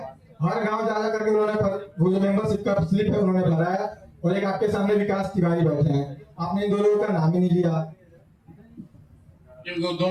हर गांव जा करके उन्होंने वो जो मेंबरशिप का स्लिप है उन्होंने भरा है, और एक आपके सामने विकास तिवारी बैठे हैं। आपने इन दो लोगों का नाम ही नहीं लिया।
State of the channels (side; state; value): both; identical; correlation 1.00